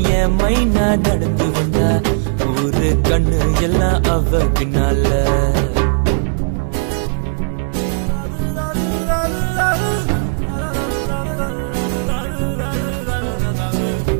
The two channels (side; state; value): left; silent; digital silence